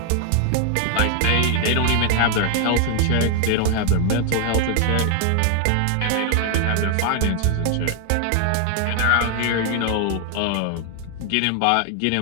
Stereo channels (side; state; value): both; different; correlation 0.00